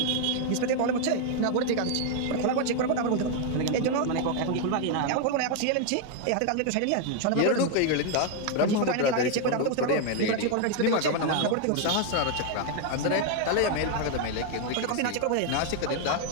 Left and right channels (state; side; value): different; both; correlation 0.00